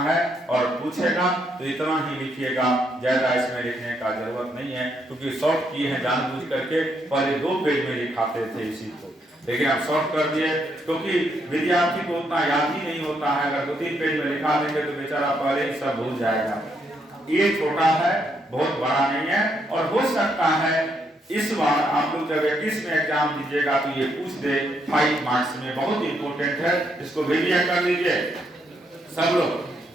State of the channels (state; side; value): normal; both; correlation 0.76